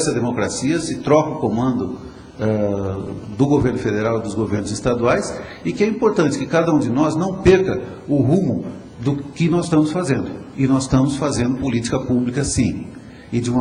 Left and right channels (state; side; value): identical; both; correlation 1.00